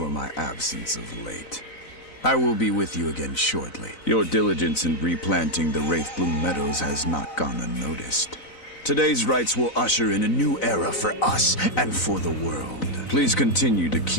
my absence of late. I will be with you again shortly. Your diligence in replanting the Wraith Blue Meadows has not gone unnoticed. Today's rites will usher in a new era for us and for the world. Please continue to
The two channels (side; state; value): right; late; 4.0 ms